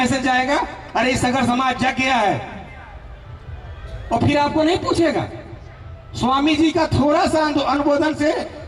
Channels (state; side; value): identical; both; correlation 1.00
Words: आएगा, अरे सागर समाज जग गया है। और फिर आपको नहीं पूछेगा। स्वामी जी का थोड़ा सा अनुमोदन से,